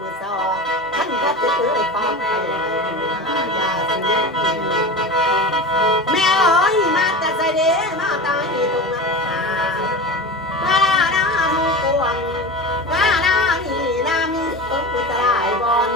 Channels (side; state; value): both; normal; correlation 0.28